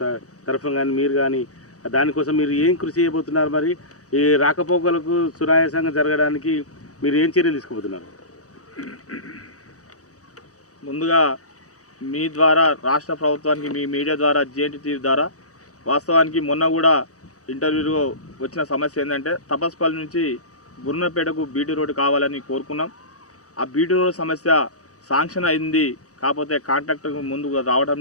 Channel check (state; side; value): late; right; 0.66 ms